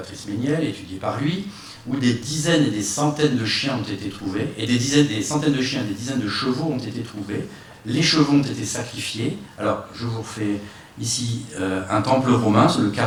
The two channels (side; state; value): both; identical; correlation 1.00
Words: Méniel, étudié par lui, où des dizaines et des centaines de chiens ont été trouvés, et des centaines de chiens et des dizaines de chevaux ont été trouvés. Les chevaux ont été sacrifiés. Alors, je vous refais ici un temple romain. Le